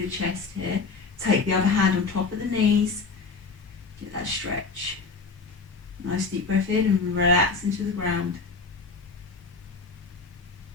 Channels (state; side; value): quieter; right; 4.4 dB